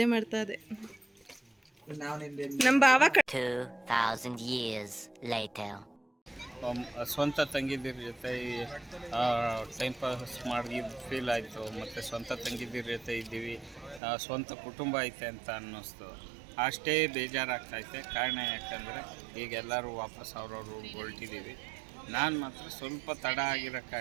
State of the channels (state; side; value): drops out; left; at 14.0 s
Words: ಮಾಡ್ತಾ ಇದೆ. ನಮ್ಮ ಬಾವ 2,000 years later. ಸ್ವಂತ ತಂಗಿದಿರ ಜೊತೆ ಟೈಮ್ ಪಾಸ್ ಮಾಡಿ ಫೀಲ್ ಆಯಿತು. ಮತ್ತು ಸ್ವಂತ ತಂಗಿದಿರ ಜೊತೆ ಇದ್ದೀವಿ, ಸ್ವಂತ ಕುಟುಂಬ ಐತೆ ಅಂತ ಅನ್ನಿಸ್ತು. ಅಷ್ಟೇ ಬೇಜಾರಾಗ್ತೈತೆ. ಕಾರಣ ಯಾಕಂದರೆ ಈಗ ಎಲ್ಲರೂ ವಾಪಸ್ ಅವ್ರವ್ರು ಹೊರಟಿದ್ದೀವಿ. ನಾನು ಮಾತ್ರ ಸ್ವಲ್ಪ ತಡ ಆಗಿರೋ